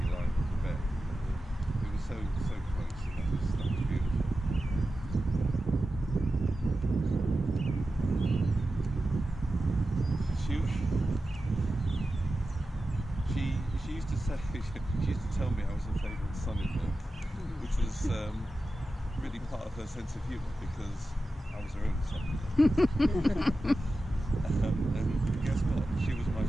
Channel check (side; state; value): both; normal; correlation 0.93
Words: lying on the bed. We were so close, and that was beautiful. She used to say, she used to tell me I was her favourite son-in-law, which was really part of her sense of humour, because I was her own son-in-law. And guess what? She was my